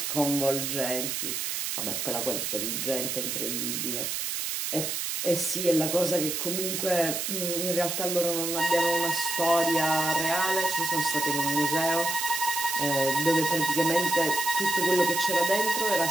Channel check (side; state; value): right; noise; hiss, 2 dB below the sound